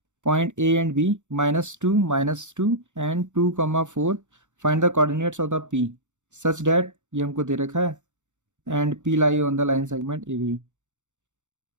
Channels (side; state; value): left; late; 0.85 ms